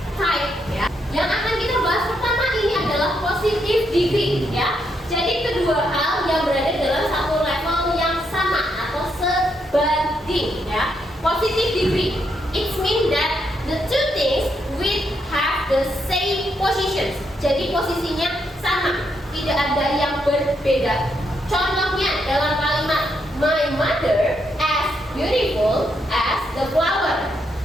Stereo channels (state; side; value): normal; both; correlation 0.78